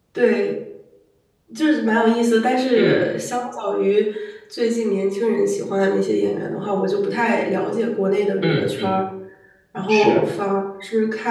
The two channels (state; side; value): identical; both; correlation 1.00